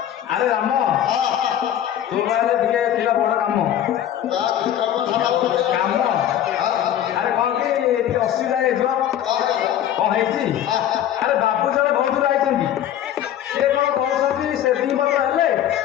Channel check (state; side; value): quieter; right; 11.0 dB